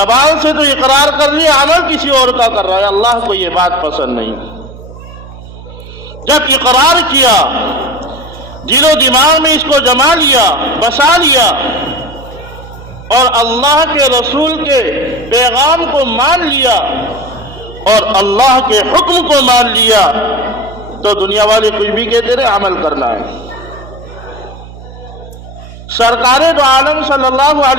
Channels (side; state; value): right; noise; hum, 17 dB below the sound